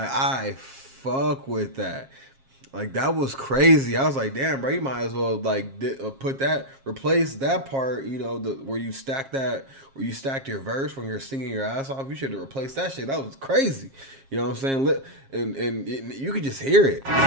fuck with that. Like that was crazy. I was like, damn, bro, you might as well like replace that part. Where you stacked your verse when you're singing your ass off. You should have replaced that shit. That was crazy. You know what I'm saying? And you could just hear it. Right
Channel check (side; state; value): left; late; 7.4 ms